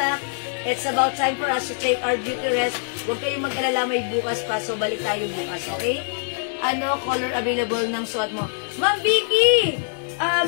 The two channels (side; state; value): right; silent; digital silence